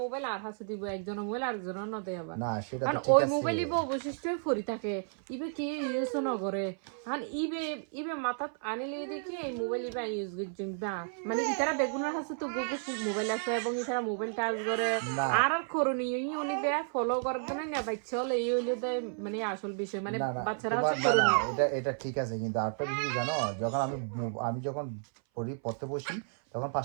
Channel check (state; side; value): silent; left; 56 dB below the other